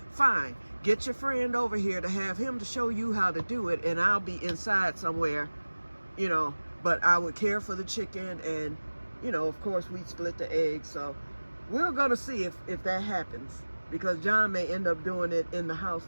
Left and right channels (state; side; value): inverted; both; correlation -1.00